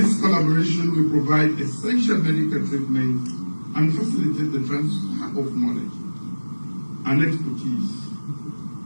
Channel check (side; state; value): both; inverted; correlation -1.00